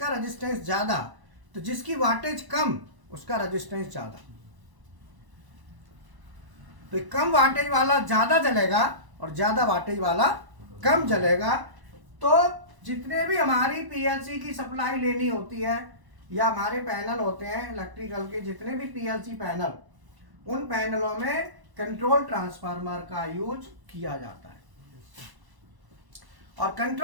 रेजिस्टेंस ज्यादा, तो जिसकी वाटेज कम उसका रेजिस्टेंस ज्यादा, तो कम वाटेज वाला ज्यादा जलेगा और ज्यादा वाटेज वाला कम जलेगा। तो जितने भी हमारी पीएलसी की सप्लाई लेनी होती है या हमारे पैनल होते हैं इलेक्ट्रिकल के, जितने भी पीएलसी पैनल, उन पैनलों में कंट्रोल ट्रांसफार्मर का यूज किया जाता है, और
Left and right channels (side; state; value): left; late; 1.0 ms